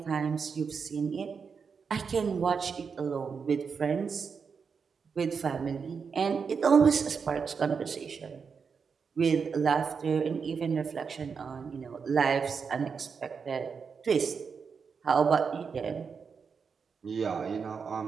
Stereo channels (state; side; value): quieter; left; 5.8 dB